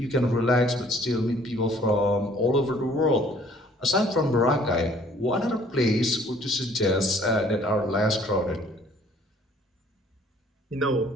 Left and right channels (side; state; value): both; normal; correlation 0.58